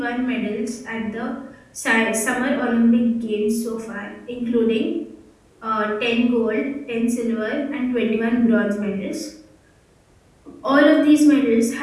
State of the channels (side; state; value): both; identical; correlation 1.00